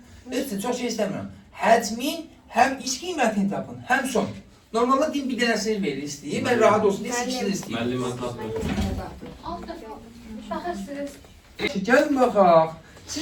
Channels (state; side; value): identical; both; correlation 1.00